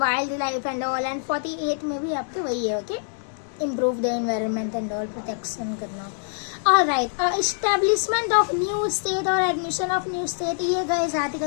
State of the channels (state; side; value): silent; right; digital silence